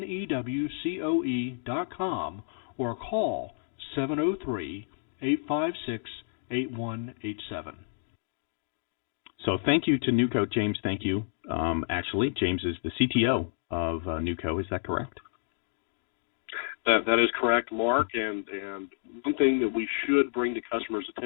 or call 703-856-8187. So thank you to NewCo, James. Thank you. Actually, James is the CTO of NewCo. Is that correct? That is correct, Mark. And one thing that we should bring to customers'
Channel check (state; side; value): silent; right; digital silence